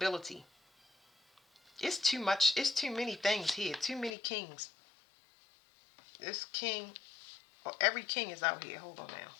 It's too much. It's too many things here. Too many kings. This king, oh, every king is out here. Hold on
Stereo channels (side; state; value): right; drops out; at 4.2 s